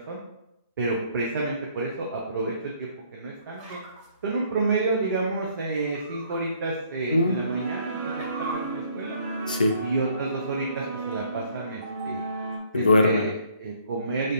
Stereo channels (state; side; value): inverted; both; correlation -0.64